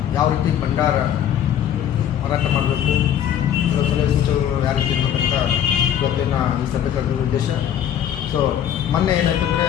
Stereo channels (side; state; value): right; quieter; 10.0 dB